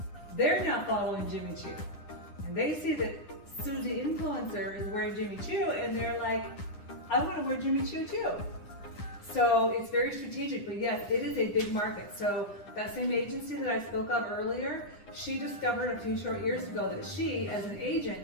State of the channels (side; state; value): right; late; 9.9 ms